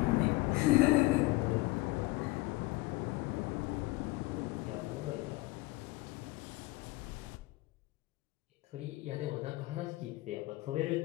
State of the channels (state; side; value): quieter; right; 20.1 dB